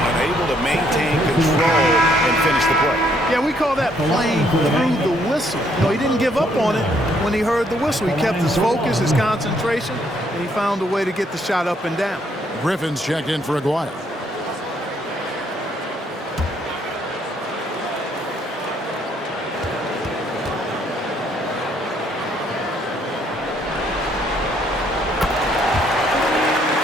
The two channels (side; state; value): both; normal; correlation 0.69